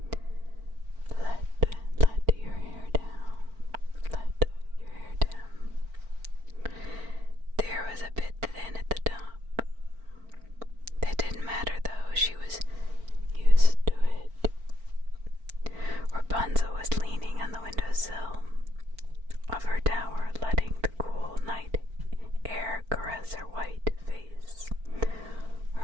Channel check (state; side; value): late; left; 4.4 ms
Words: Let your hair down. Let your hair down. There was a bit thin at the top. That didn't matter though, she was used to it. Rapunzel was leaning on the windowsill of her tower, letting the cool night air caress her white face.